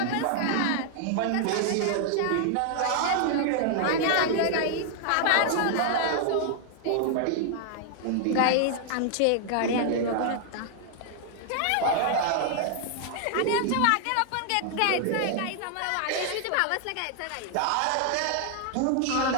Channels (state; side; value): different; both; correlation 0.00